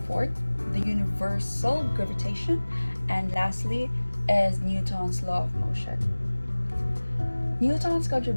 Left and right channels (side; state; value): both; inverted; correlation -1.00